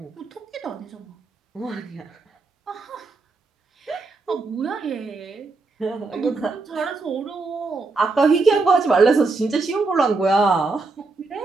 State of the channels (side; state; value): left; quieter; 3.8 dB